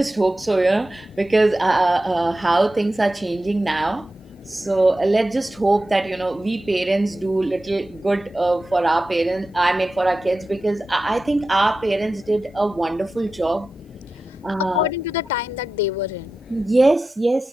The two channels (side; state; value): both; normal; correlation 0.93